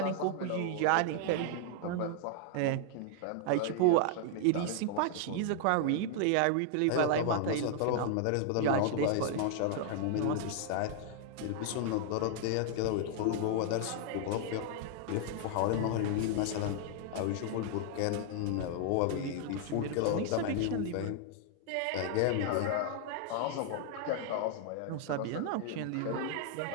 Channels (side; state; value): both; different; correlation -0.01